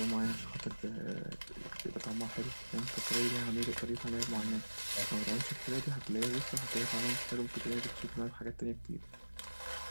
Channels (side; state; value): both; inverted; correlation -1.00